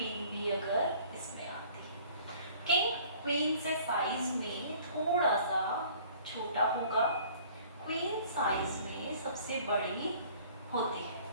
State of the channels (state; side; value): inverted; both; correlation -0.52